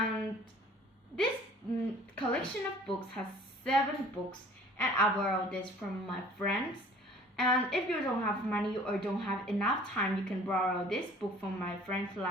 this collection of books has 7 books, and I borrowed this from my friends. And if you don't have money or don't have enough time, you can borrow this book from my friend's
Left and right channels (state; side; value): normal; both; correlation 0.50